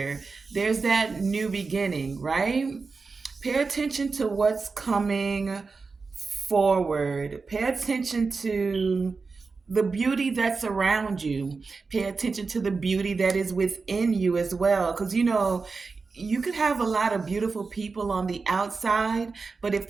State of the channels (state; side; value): quieter; left; 4.4 dB